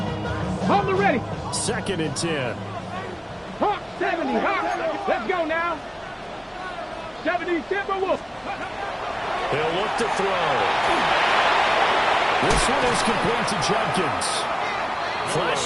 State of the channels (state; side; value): identical; both; correlation 1.00